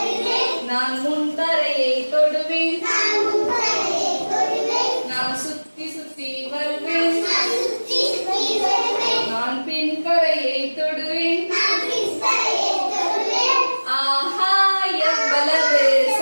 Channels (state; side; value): inverted; both; correlation -1.00